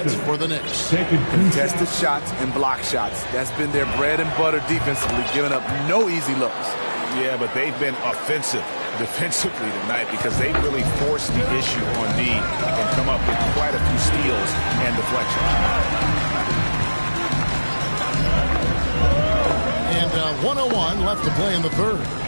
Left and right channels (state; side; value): inverted; both; correlation -1.00